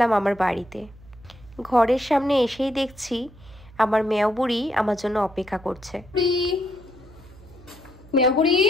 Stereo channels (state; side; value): noise; right; hum, 22 dB below the sound